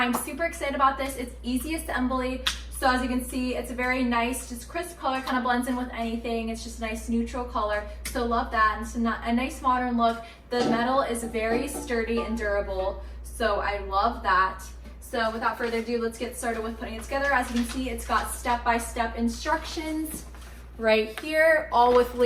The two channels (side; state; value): both; identical; correlation 1.00